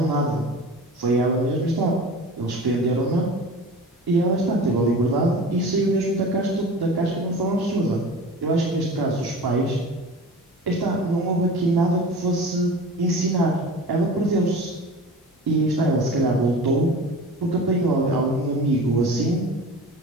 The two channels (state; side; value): normal; both; correlation 0.37